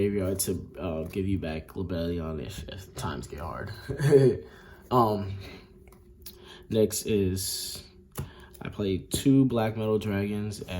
to give you back Lebellion if times get hard. Next is I played 2 Black Metal Dragons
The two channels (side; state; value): both; identical; correlation 1.00